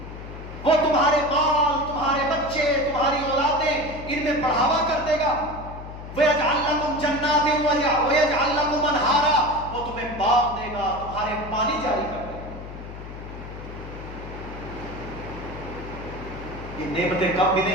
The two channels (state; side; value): noise; left; hum, 12 dB below the sound